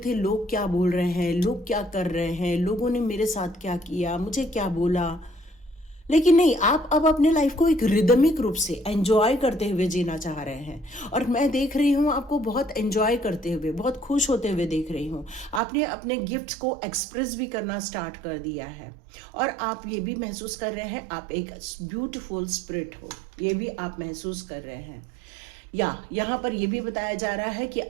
लोग क्या बोल रहे हैं, लोग क्या कर रहे हैं, लोगों ने मेरे साथ क्या किया, मुझे क्या बोला। लेकिन नहीं, आप अब अपने लाइफ को एक रिदमिक रूप से एंजॉय करते हुए जीना चाह रहे हैं। और मैं देख रही हूँ आपको बहुत एंजॉय करते हुए, बहुत खुश होते हुए देख रही हूँ। आपने अपने गिफ्ट्स को एक्सप्रेस भी करना स्टार्ट कर दिया है और आप ये भी महसूस कर रहे हैं आप एक ब्यूटीफुल स्पिरिट हो, ये भी आप महसूस कर रहे हैं। या यहाँ पर यह भी बताया जा रहा है कि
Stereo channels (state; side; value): drops out; left; at 15.6 s